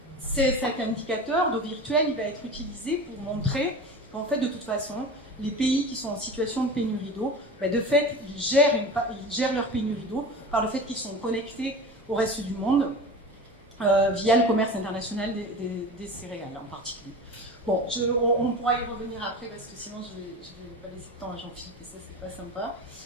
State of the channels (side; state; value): both; normal; correlation 0.32